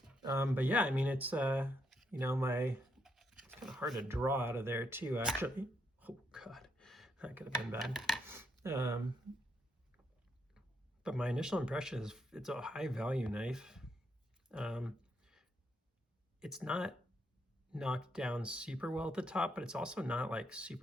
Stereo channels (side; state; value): both; normal; correlation 0.77